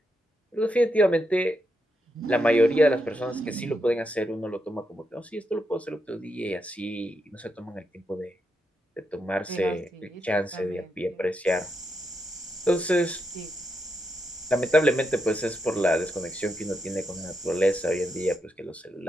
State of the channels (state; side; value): normal; both; correlation 0.83